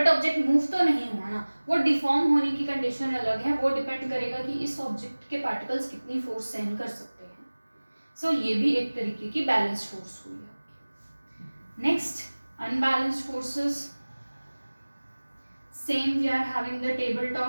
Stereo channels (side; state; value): both; inverted; correlation -1.00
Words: ऑब्जेक्ट मूव तो नहीं हुआ ना. वो डिफॉर्म होने की कंडीशन अलग है, वो डिपेंड करेगा कि इस ऑब्जेक्ट के पार्टिकल्स कितनी फोर्स सहन कर सकते हैं. सो ये भी एक तरीके की बैलेंस्ड फोर्स हुई है. Next, unbalanced forces. Same we are having the table